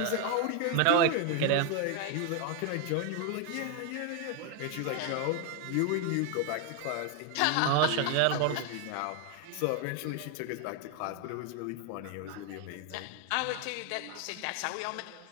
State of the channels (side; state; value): both; different; correlation 0.01